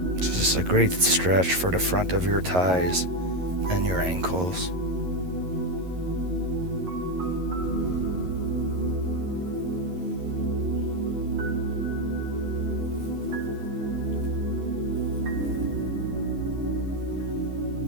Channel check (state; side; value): late; left; 11 ms